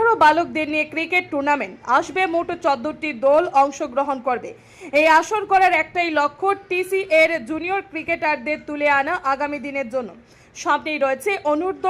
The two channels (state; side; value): identical; both; correlation 1.00